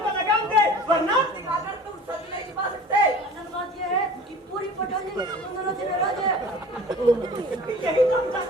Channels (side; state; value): both; normal; correlation 0.42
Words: को लगाम दे, वरना अगर तुम सच नहीं छिपा सकते, असल बात ये है कि पूरी पठानी तुम दोनों से नाराज है। यही तो हम